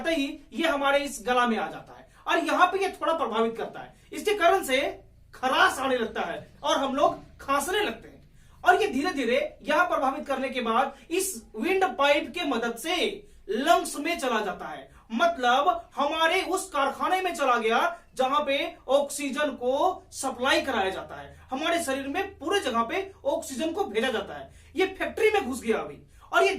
ही ये हमारे इस गला में आ जाता है और यहां पे ये थोड़ा प्रभावित करता है। इसके कारण से खराश आने लगता है और हम लोग खांसने लगते हैं और ये धीरे धीरे यहां प्रभावित करने के बाद इस विंड पाइप के मदद से लंग्स में चला जाता है, मतलब हमारे उस कारखाने में चला गया जहां पे ऑक्सीजन को सप्लाई कराया जाता है। हमारे शरीर में पूरे जगह पे ऑक्सीजन को भेजा जाता है। ये फैक्ट्री में घुस गया अभी और ये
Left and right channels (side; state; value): both; identical; correlation 1.00